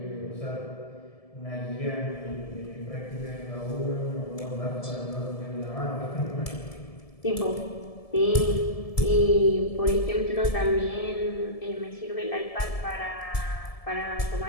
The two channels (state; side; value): late; right; 1.7 ms